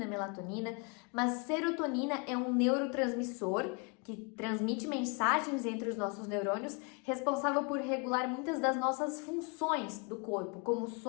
melatonina, mas serotonina é um neurotransmissor que transmite mensagens entre os nossos neurônios, responsável por regular muitas das nossas funções do corpo, como o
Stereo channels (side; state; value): right; quieter; 33.6 dB